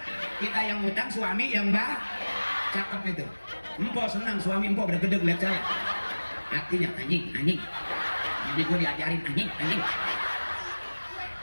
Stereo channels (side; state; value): both; inverted; correlation -1.00